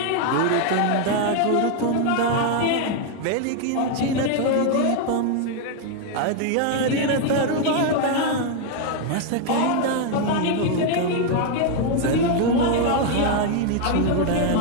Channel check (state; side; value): different; both; correlation 0.01